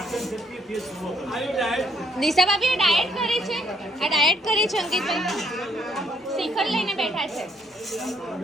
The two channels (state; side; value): normal; both; correlation 0.69